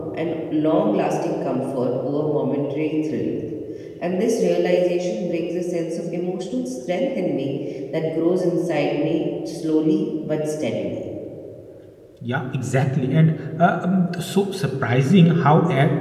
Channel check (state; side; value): identical; both; correlation 1.00